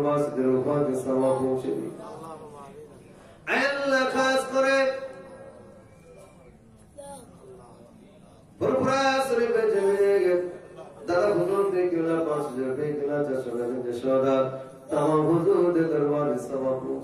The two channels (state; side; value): identical; both; correlation 1.00